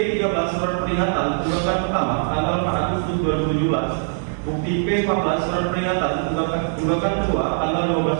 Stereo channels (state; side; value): silent; left; 56 dB below the other